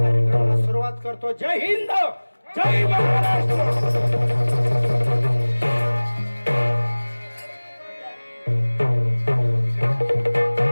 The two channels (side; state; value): both; inverted; correlation -1.00